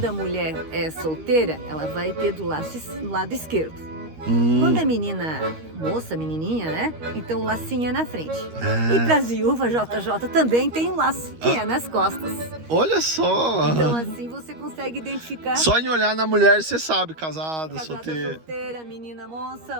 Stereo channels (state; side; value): late; left; 13 ms